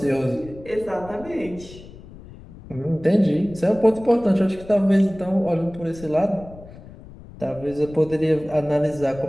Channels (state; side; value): noise; left; rumble, 18 dB below the sound